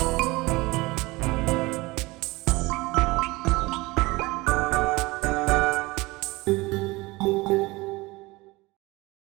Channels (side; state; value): left; quieter; 22.2 dB